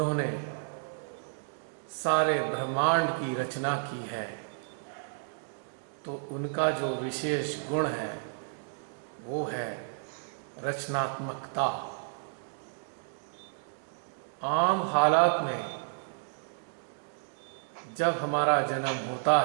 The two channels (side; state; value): left; silent; digital silence